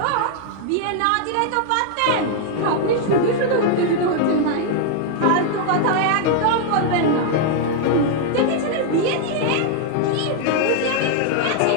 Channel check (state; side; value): different; both; correlation 0.00